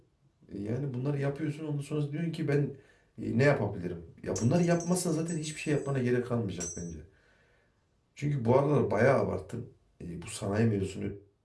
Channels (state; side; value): identical; both; correlation 1.00